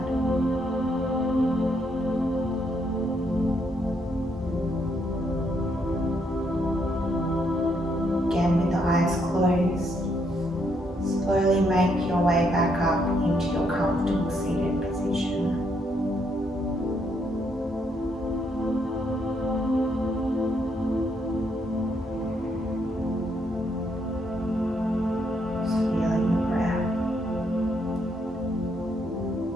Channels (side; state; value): both; normal; correlation 0.74